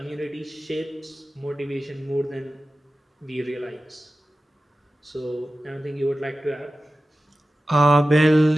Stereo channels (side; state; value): both; normal; correlation 0.94